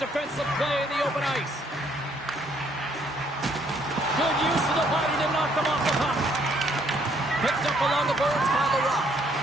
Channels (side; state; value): both; normal; correlation 0.67